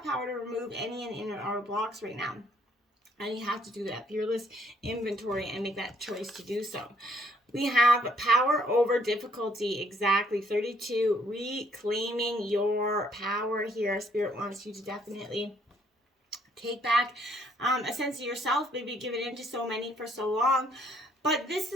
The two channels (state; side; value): normal; both; correlation 0.66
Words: power to remove any and inner outer blocks right now. And you have to do that fearless inventory and make that choice to do so. We have power over difficulty, exactly 32, reclaiming your power here. Spirit wants you to definitely take back a sense of yourself, maybe given into so many for so long. But this